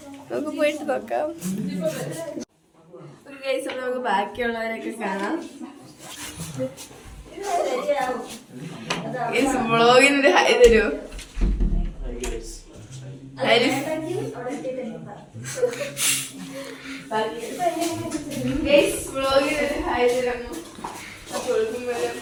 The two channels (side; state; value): both; identical; correlation 1.00